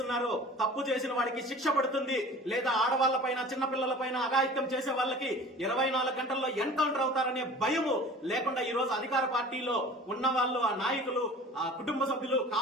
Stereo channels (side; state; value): both; normal; correlation 0.42